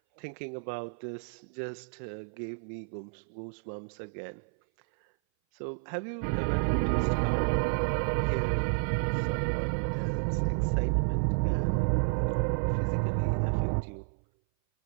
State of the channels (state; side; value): silent; left; 57 dB below the other